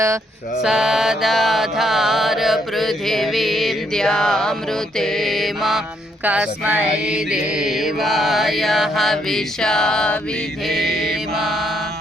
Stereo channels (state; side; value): normal; both; correlation 0.73